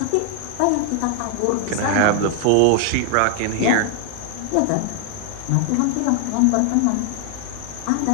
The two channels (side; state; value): both; different; correlation 0.00